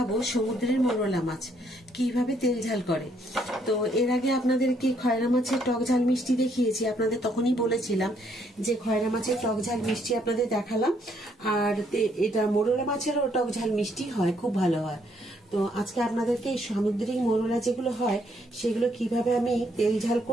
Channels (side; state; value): both; normal; correlation 0.70